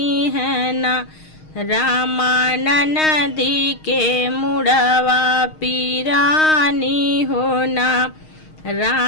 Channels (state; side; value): late; right; 6.4 ms